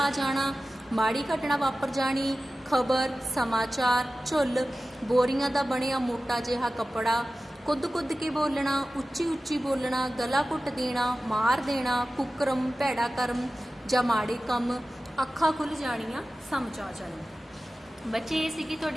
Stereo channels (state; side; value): normal; both; correlation 0.95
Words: ਜਾਣਾ, ਮਾੜੀ ਘਟਨਾ ਵਾਪਰ ਜਾਣੀ, ਖਬਰ, ਸਮਾਚਾਰ, ਝੁੱਲ, ਬੋਰੀਆਂ ਦਾ ਬਣਿਆ ਮੋਟਾ ਜਿਹਾ ਕੱਪੜਾ, ਕੁੱਦ ਕੁੱਦ ਕੇ ਬੋਲਣਾ, ਉੱਚੀ ਉੱਚੀ ਬੋਲਣਾ, ਗਲਾ ਘੁੱਟ ਦੇਣਾ, ਮਾਰ ਦੇਣਾ, ਕੁਕਰਮ, ਭੈੜਾ ਕਰਮ ਜਾਂ ਮਾੜੇ ਕੰਮ, ਅੱਖਾਂ ਖੁੱਲ੍ਹ ਜਾਣੀਆਂ, ਸਮਝ ਆ ਜਾਣੀ। ਬੱਚੇ ਇਹ ਸੀਗੀ